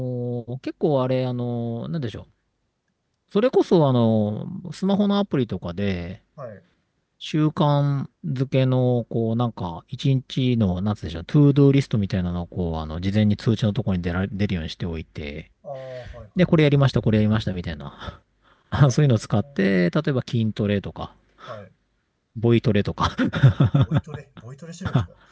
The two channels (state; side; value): identical; both; correlation 1.00